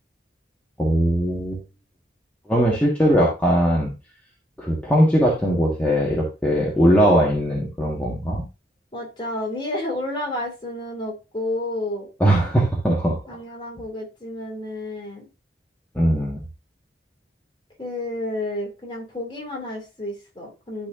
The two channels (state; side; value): normal; both; correlation 0.72